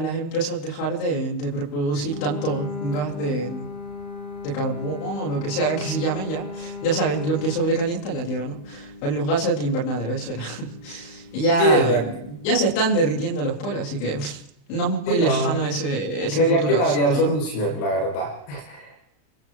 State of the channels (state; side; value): late; right; 35 ms